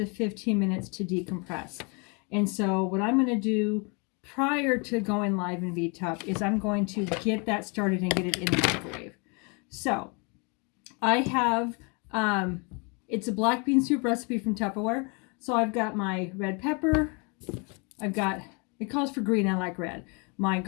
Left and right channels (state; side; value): quieter; right; 32.7 dB